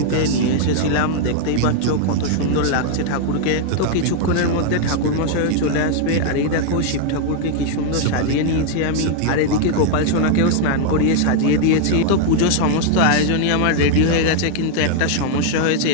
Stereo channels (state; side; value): different; both; correlation 0.00